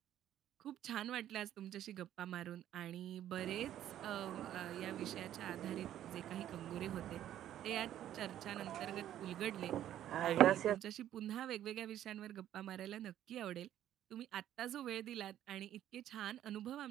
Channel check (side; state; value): left; quieter; 11.7 dB